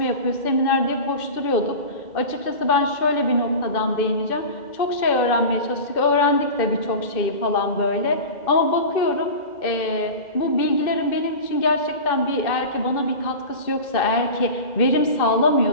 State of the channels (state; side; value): late; right; 2.6 ms